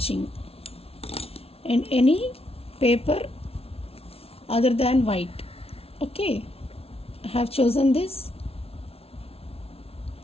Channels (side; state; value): right; late; 0.29 ms